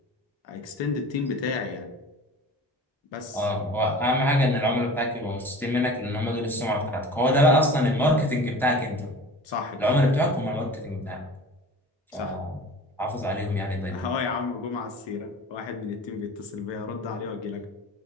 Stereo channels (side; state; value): both; normal; correlation 0.39